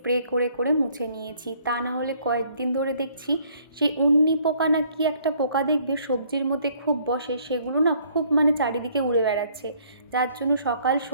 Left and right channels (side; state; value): both; inverted; correlation -0.62